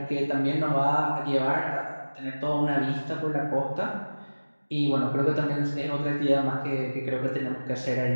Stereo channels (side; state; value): both; inverted; correlation -1.00